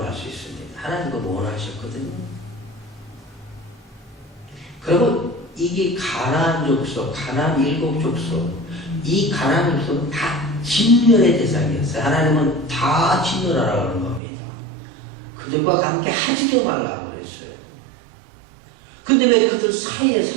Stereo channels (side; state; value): left; drops out; at 14.2 s